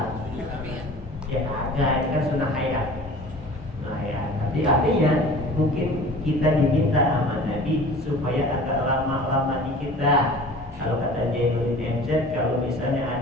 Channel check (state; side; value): normal; both; correlation 0.42